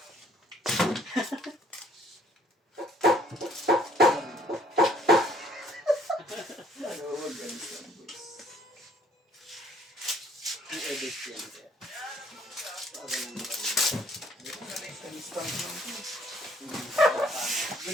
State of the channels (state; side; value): normal; both; correlation 0.61